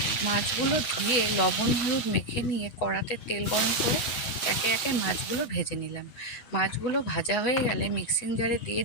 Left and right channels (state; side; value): late; right; 8.1 ms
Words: মাছগুলো ধুয়ে লবণ হলুদ মেখে নিয়ে কড়াতে তেল গরম করে একে একে মাছগুলো ভেজে নিলাম। মাছগুলো ভাজা হয়ে গেলে মিক্সিং জারে দিয়ে